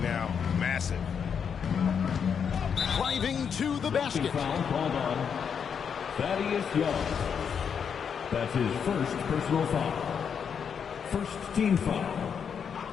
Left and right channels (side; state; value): right; quieter; 7.1 dB